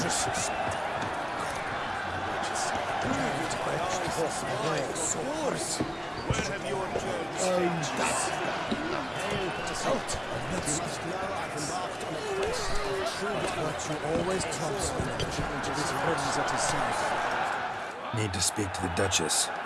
Need to speak to the Duchess,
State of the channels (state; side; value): identical; both; correlation 1.00